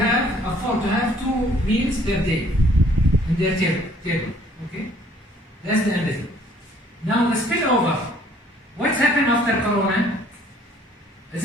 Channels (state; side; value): normal; both; correlation 0.59